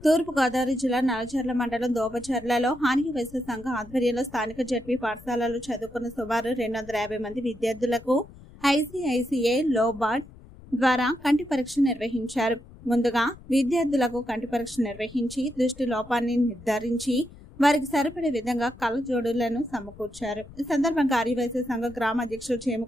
తూర్పు గోదావరి జిల్లా నల్లజర్ల మండలం దోపచర్లలో హాని వైశ్య సంఘ ఆధ్వర్యంలో స్థానిక జడ్పీ పాఠశాలలో చదువుకున్న సుమారు 250 మంది విద్యార్థులకు ఐసీఐసీఐ లోబార్డ్ ద్వారా కంటి పరీక్ష నిర్వహించారు. ముందుగా విద్యార్థులకు కంటి పరీక్ష నిర్వహించి దృష్టి లోపాన్ని నిర్ధారించి వారికి సరిపడే విధంగా కళ్ళజోడులను సమకూర్చారు. ఈ సందర్భంగా ఆర్యవైశ్య సంఘ గ్రామ అధ్యక్షుడు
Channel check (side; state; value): left; noise; rumble, 20 dB below the sound